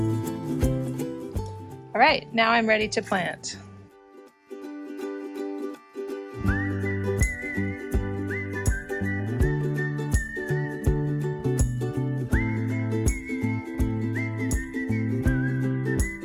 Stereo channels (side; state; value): both; identical; correlation 1.00